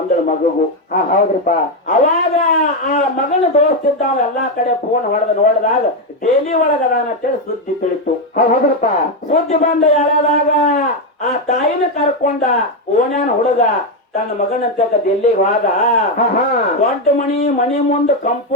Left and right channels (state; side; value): normal; both; correlation 0.06